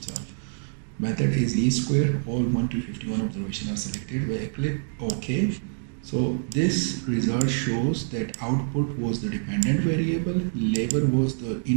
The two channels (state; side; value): silent; left; digital silence